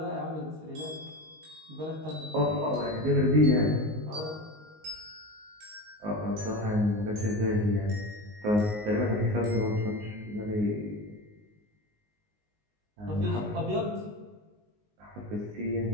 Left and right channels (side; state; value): left; late; 19 ms